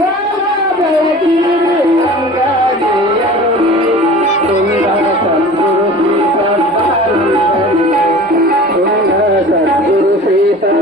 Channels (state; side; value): normal; both; correlation 0.40